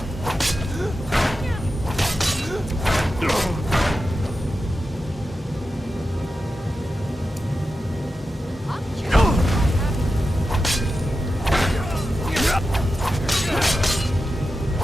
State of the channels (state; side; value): normal; both; correlation 0.91